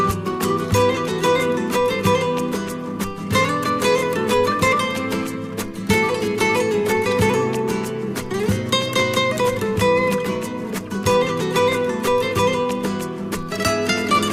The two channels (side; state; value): both; identical; correlation 1.00